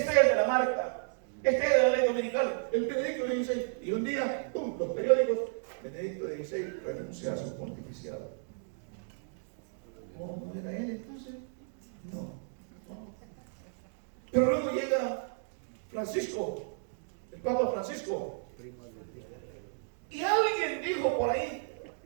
de la marca, este es de la ley dominical, el Benedicto XVI. Y un día, los periódicos, Benedicto XVI renuncia a su pontificado. ¿No era él entonces? No. Pero luego llega Francisco, el Papa Francisco, y alguien dijo por ahí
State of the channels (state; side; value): silent; left; digital silence